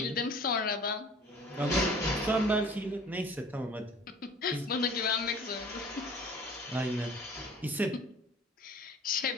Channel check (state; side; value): normal; both; correlation 0.47